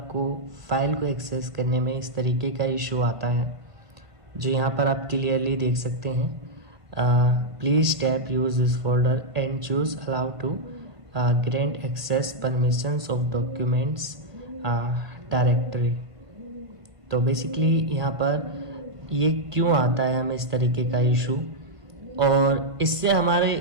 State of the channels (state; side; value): late; left; 1.5 ms